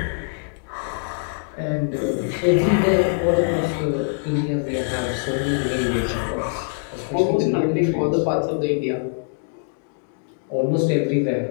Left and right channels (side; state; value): right; silent; digital silence